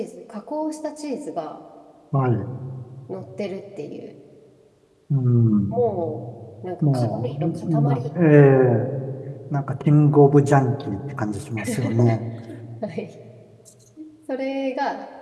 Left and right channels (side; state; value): both; identical; correlation 1.00